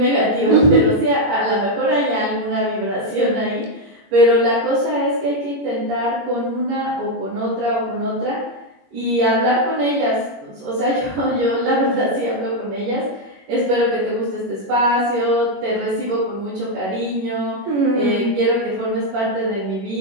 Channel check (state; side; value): late; left; 21 ms